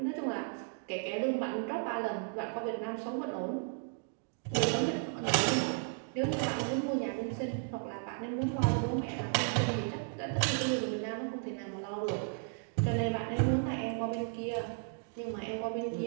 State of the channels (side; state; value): left; silent; 55 dB below the other